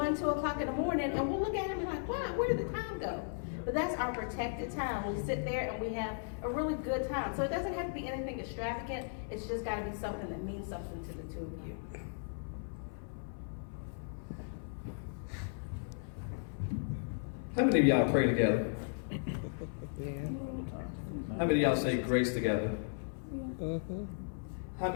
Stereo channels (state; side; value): silent; right; 54 dB below the other